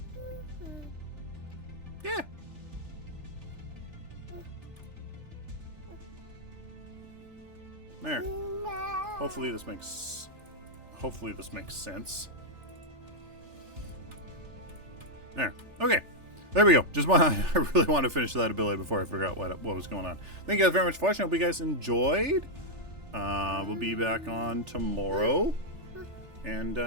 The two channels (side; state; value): left; late; 3.4 ms